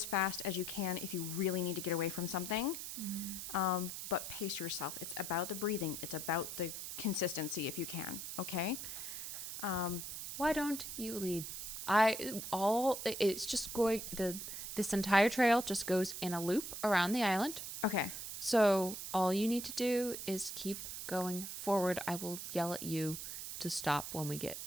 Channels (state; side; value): noise; right; hiss, 7 dB below the sound